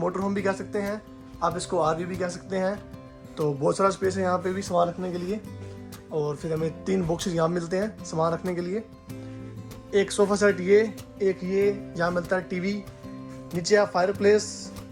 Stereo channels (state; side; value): identical; both; correlation 1.00